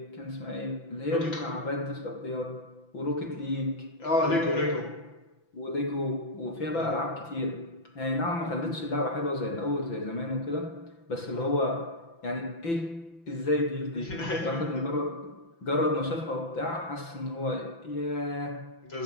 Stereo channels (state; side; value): late; right; 6.0 ms